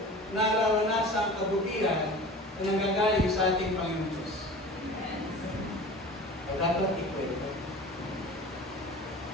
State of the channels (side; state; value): both; normal; correlation 0.39